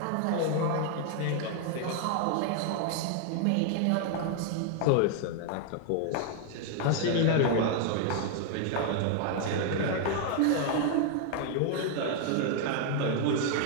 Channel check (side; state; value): both; different; correlation 0.00